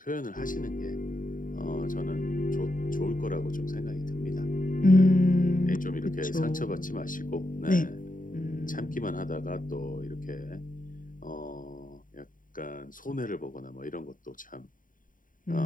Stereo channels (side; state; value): right; late; 0.39 ms